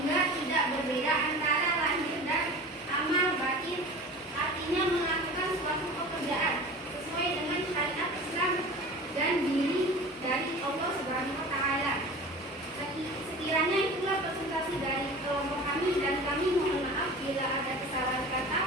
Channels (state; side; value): normal; both; correlation 0.37